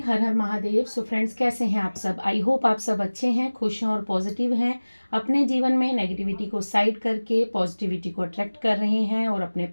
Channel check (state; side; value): inverted; both; correlation -1.00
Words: हर हर Mahadev. So friends, कैसे हैं आप सब? आई होप आप सब अच्छे हैं, खुश हैं और पॉजिटिव हैं। अपने जीवन में नेगेटिविटी को साइड करके पॉजिटिविटी को अट्रैक्ट कर रहे हैं और अपने